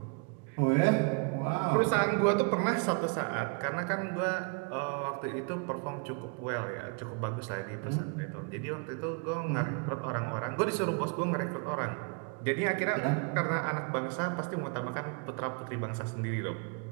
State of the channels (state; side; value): quieter; left; 34.3 dB